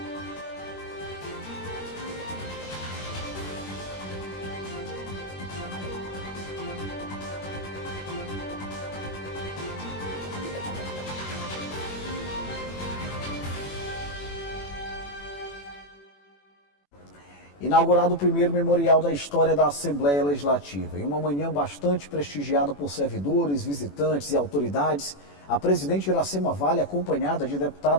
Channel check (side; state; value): right; late; 21 ms